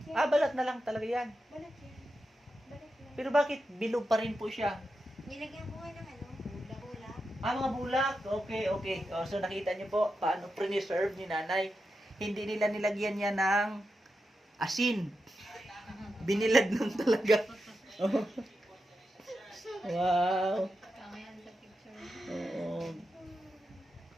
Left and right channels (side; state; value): both; normal; correlation 0.88